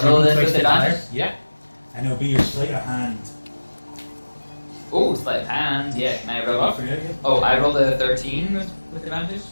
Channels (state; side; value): inverted; both; correlation -1.00